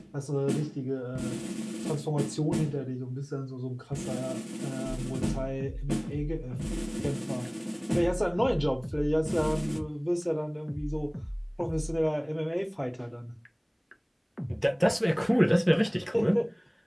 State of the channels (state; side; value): identical; both; correlation 1.00